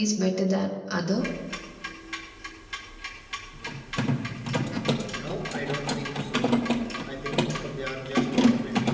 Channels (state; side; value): identical; both; correlation 1.00